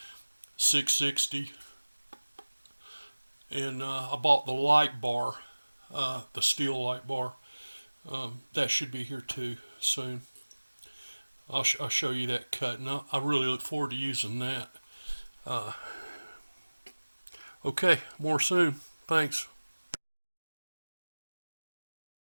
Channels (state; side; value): inverted; both; correlation -1.00